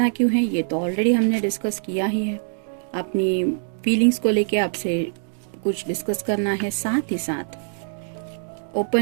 क्यों है ये तो ऑलरेडी हमने डिस्कस किया ही है। अपनी फीलिंग्स को लेके आपसे कुछ डिस्कस करना है, साथ ही साथ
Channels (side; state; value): left; silent; 61 dB below the other